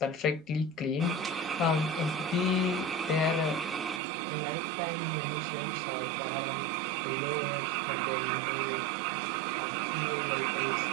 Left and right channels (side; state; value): left; drops out; at 4.0 s